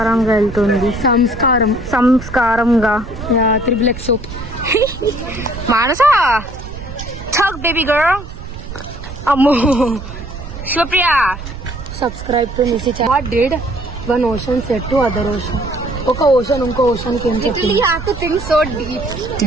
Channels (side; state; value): right; noise; rumble, 11 dB below the sound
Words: వెళ్తుంది. సంస్కారంగా. Triple X Manasa talk baby girl. అమ్మో శుప్రియా. సబ్స్క్రైబ్ టు నిసి. What did one ocean said to other ocean? ఒక ఓషన్ ఇంకో ఓషన్ కి ఏం చెప్పింది?